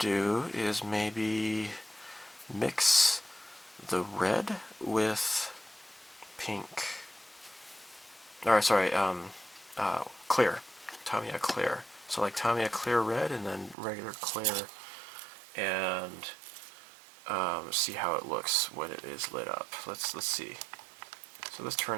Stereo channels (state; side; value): drops out; left; at 13.8 s